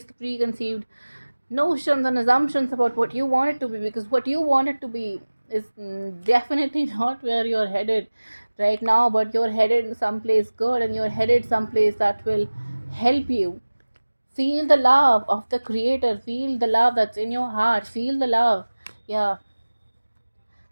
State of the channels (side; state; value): both; inverted; correlation -1.00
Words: the preconceived notions and assumptions about what you want it to be, because what you want it to be is definitely not where you're headed right now, but you're headed someplace good, and you're headed someplace that will help you feel the love of the creator, feel the love that's in your heart, feel the love. Yeah,